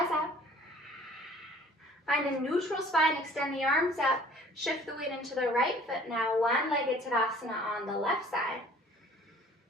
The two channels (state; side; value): normal; both; correlation 0.52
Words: up. Find a neutral spine, extend the arms up. Shift the weight into the right foot now. One-legged Tadasana on the left side.